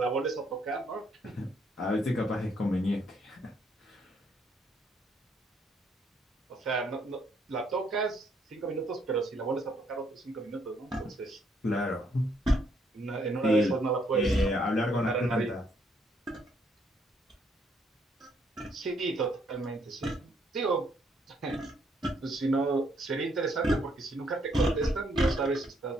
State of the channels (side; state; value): both; normal; correlation 0.70